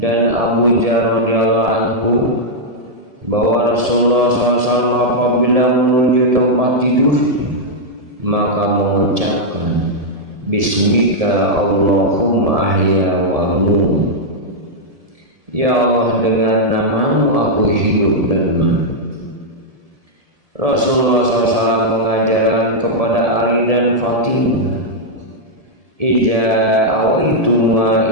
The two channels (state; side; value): late; left; 1.7 ms